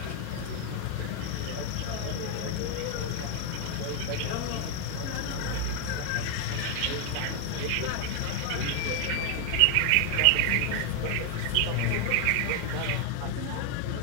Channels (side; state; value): both; different; correlation 0.01